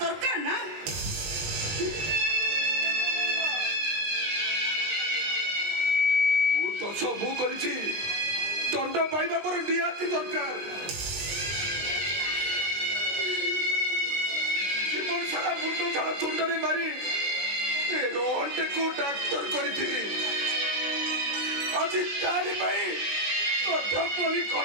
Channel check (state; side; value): late; left; 20 ms